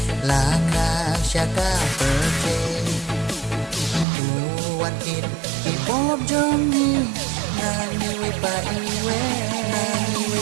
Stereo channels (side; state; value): left; drops out; at 4.0 s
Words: laka syaka pertai. Uwan kit ipop jomi, nani wipa iwe, nani